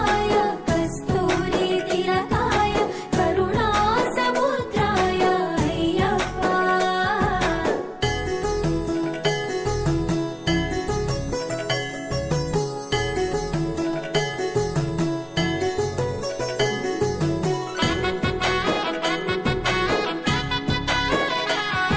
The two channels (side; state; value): both; identical; correlation 1.00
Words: కస్తూరి తిలకాయ కరుణా సముద్రాయ అయ్యప్ప.